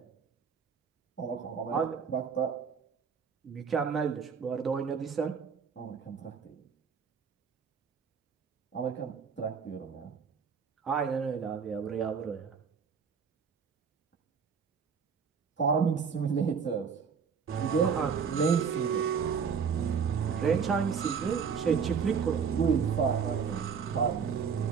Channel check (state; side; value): quieter; left; 6.3 dB